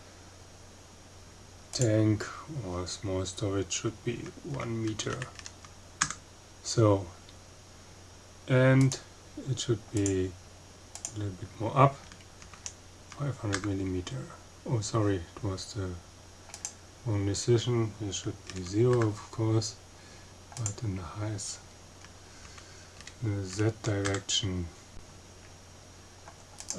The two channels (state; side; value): identical; both; correlation 1.00